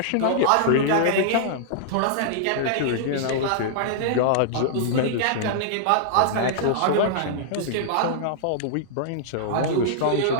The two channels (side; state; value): both; different; correlation -0.02